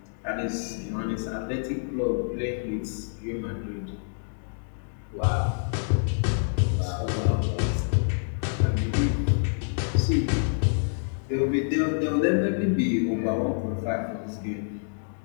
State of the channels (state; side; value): silent; right; digital silence